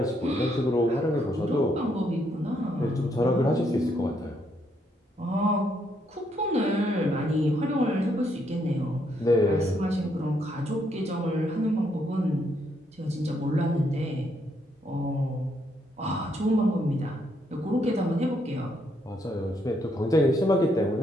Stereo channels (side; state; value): both; normal; correlation 0.74